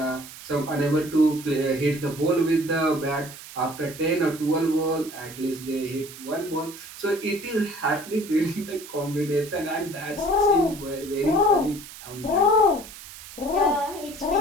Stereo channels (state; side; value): noise; right; hiss, 15 dB below the sound